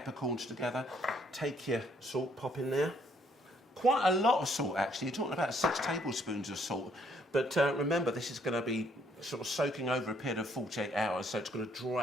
together. Take your salt, pop in there. Quite a lot of salt, actually. You're talking about 6 tablespoons of salt. But remember, this is going to be sort of soaking over a period of 48 hours, so it's going to draw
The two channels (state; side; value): normal; both; correlation 0.67